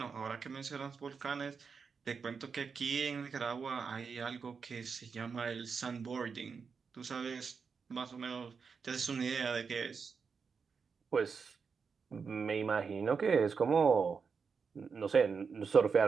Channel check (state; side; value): quieter; left; 5.6 dB